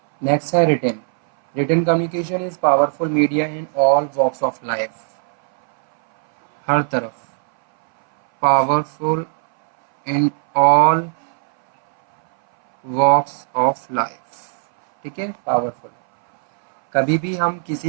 नेक्स्ट है written. Written communication is powerful media in all walks of life. हर तरफ powerful in all walks of life, ठीक है, पावरफुल. कभी भी हम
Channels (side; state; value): left; silent; 63 dB below the other